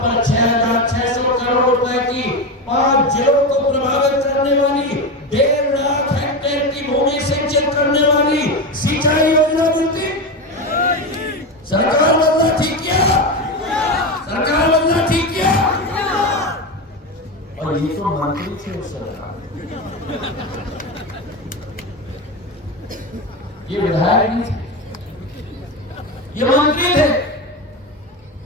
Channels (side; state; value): both; normal; correlation 0.18